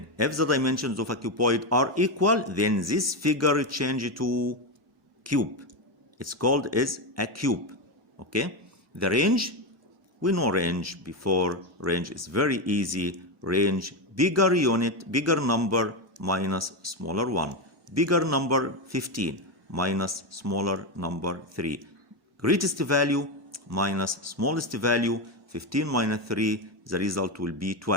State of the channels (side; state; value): both; normal; correlation 0.11